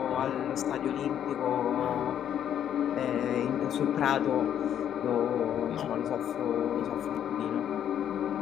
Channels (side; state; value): right; quieter; 9.8 dB